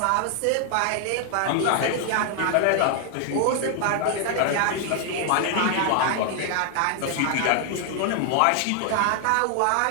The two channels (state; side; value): different; both; correlation 0.00